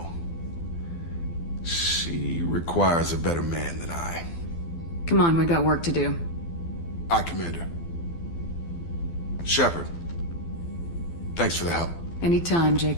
She requires a better man than I. Come on, we got work to do. Aye, Commander. Shepard, Thanks for the help. Anytime,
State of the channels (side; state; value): right; late; 12 ms